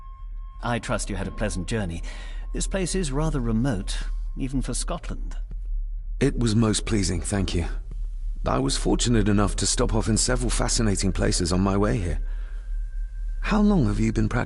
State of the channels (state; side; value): identical; both; correlation 1.00